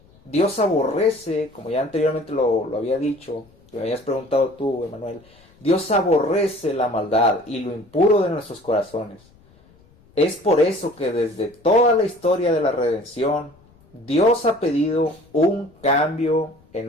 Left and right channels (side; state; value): left; noise; rumble, 29 dB below the sound